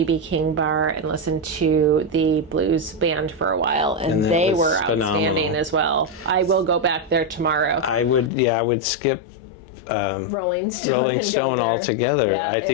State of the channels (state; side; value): drops out; right; at 8.3 s